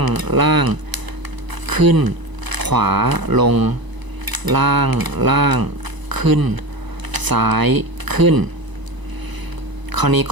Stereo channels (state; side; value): late; left; 1.0 ms